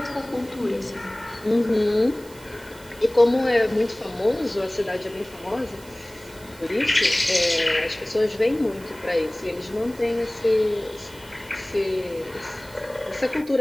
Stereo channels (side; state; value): right; noise; hiss, 22 dB below the sound